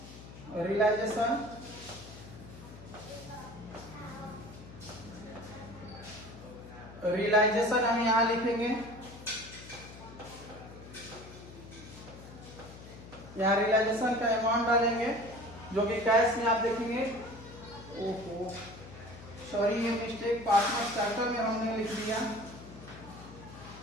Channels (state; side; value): noise; left; hum, 16 dB below the sound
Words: रियलाइजेशन। रियलाइजेशन हम यहाँ लिखेंगे, यहाँ रियलाइजेशन का अमाउंट डालेंगे जो कि कैश में आप देखेंगे। ओहो सॉरी, ये मिस्टेक पार्टनर स्टार्टर में हमने लिख दिया।